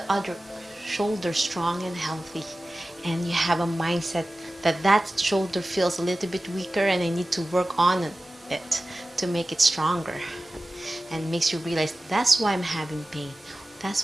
other shoulder strong and healthy. And you have a mindset that that shoulder feels a little bit weaker and I need to work on it to make it stronger. And makes you realize that's why I'm having pain. That's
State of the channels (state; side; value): normal; both; correlation 0.96